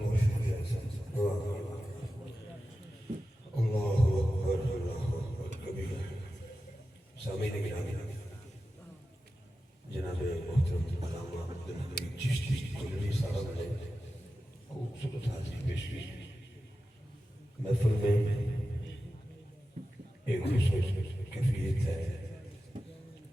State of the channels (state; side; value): normal; both; correlation 0.93